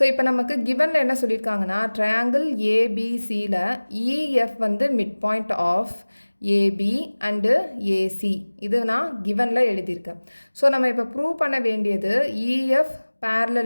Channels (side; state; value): both; inverted; correlation -1.00